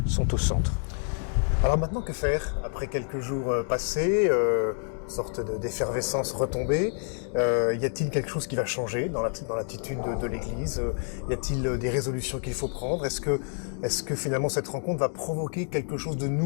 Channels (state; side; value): silent; right; 59 dB below the other